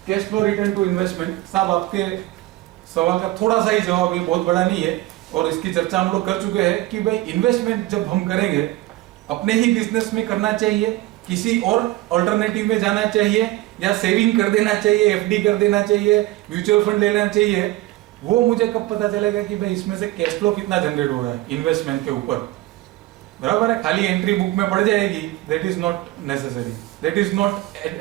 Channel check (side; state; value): left; quieter; 17.4 dB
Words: Cash flow return to investment, साहब आपके सवाल का थोड़ा सा ही जवाब, ये बहुत बड़ा नहीं है और इसकी चर्चा हम लोग कर चुके हैं कि भाई इन्वेस्टमेंट जब हम करेंगे अपने ही बिजनेस में करना चाहिए, किसी और अल्टरनेटिव में जाना चाहिए, या सेविंग कर देना चाहिए, एफडी कर देना चाहिए, म्यूचुअल फंड लेना चाहिए, वो मुझे कब पता चलेगा कि भाई इसमें से कैश फ्लो कितना जनरेट हो रहा है इन्वेस्टमेंट के ऊपर, बराबर है। खाली एंट्री बुक में पड़ जाएगी, that is not necessary, that is not